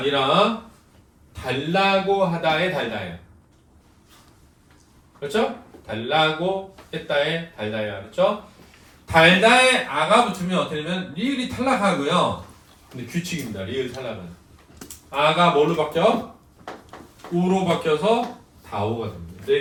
달라고 하다의 달다예요. 그렇죠? 달라고 했다의 달다예요. 그렇죠? 달다에 아가 붙으면 어떻게 되면 리을이 탈락하고요. 근데 규칙입니다. 리을 탈락은 아가 뭐로 바뀌어? 우로 바뀌어서 다오가 됩니다.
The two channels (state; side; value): identical; both; correlation 1.00